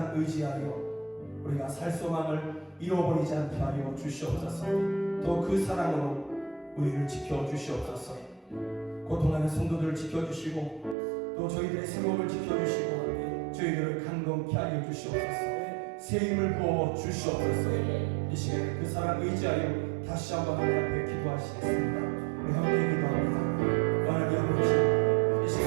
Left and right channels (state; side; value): drops out; left; at 11.0 s